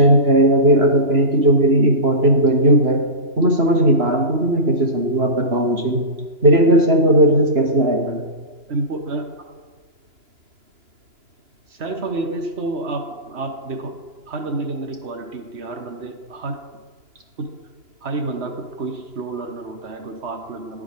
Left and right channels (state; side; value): late; left; 2.9 ms